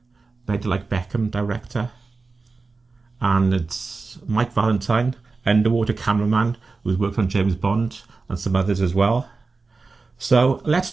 Better Like Beckham, director, and it's Mike Valentine, underwater cameraman, who's worked on James Bond and some others as well. So let's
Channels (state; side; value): quieter; left; 4.0 dB